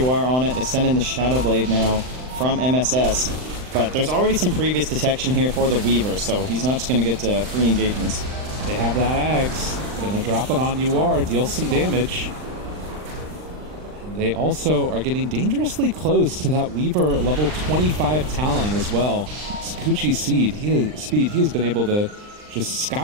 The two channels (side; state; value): left; late; 39 ms